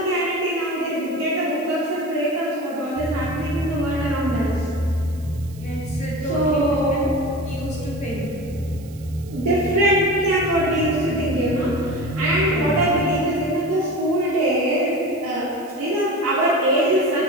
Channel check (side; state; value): right; noise; hiss, 24 dB below the sound